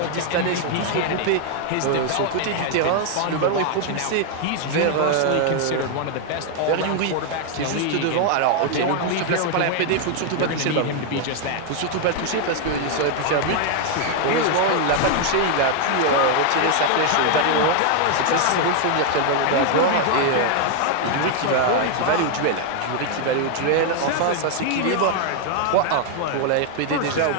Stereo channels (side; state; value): both; different; correlation 0.00